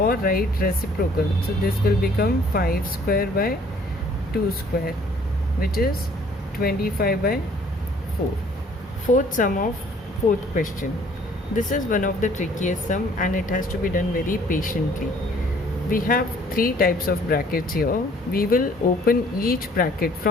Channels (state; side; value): normal; both; correlation 0.58